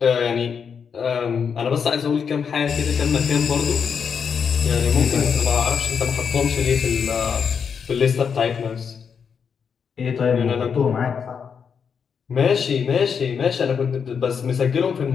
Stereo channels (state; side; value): quieter; right; 6.6 dB